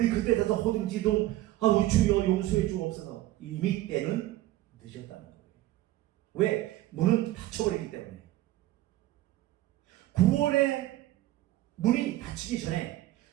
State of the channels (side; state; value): left; quieter; 15.7 dB